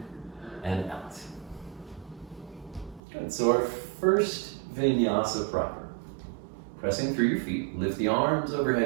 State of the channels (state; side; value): drops out; left; at 3.0 s